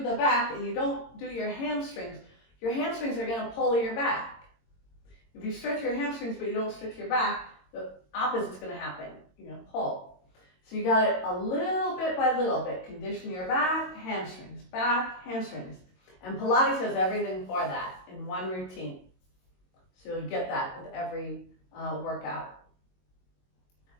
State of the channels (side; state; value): right; late; 22 ms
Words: the back and you don't do your hamstrings are going to pull your back. If you stretch your hamstrings but you don't stretch your back, the opposite's going to happen. You're going to pull. So you got it a little bit by little bit. Condition your back, hamstrings, back, hamstrings. And Pilates has everything for that in one routine. So you'll get that with every workout.